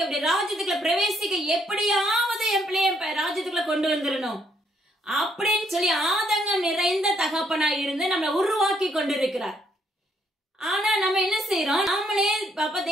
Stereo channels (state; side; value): normal; both; correlation 0.71